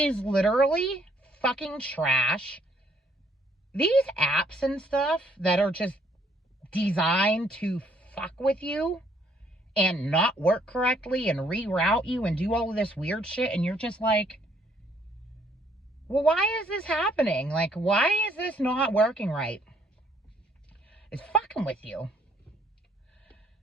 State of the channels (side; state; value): both; normal; correlation 0.67